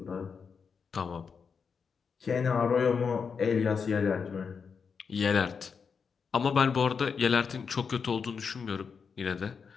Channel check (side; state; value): right; quieter; 5.9 dB